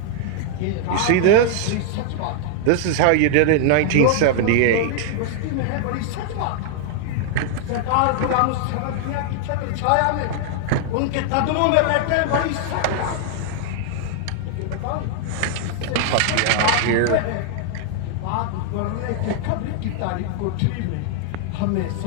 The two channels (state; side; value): different; both; correlation -0.01